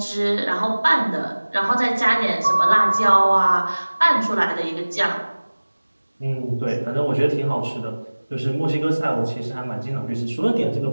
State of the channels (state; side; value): inverted; both; correlation -1.00